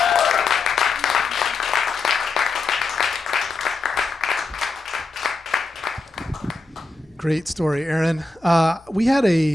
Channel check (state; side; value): quieter; right; 3.4 dB